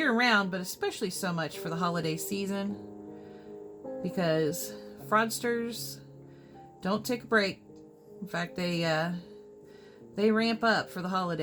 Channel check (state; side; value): identical; both; correlation 1.00